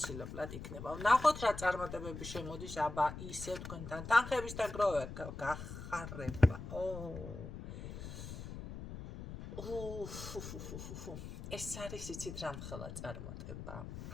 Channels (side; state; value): left; noise; rumble, 9 dB below the sound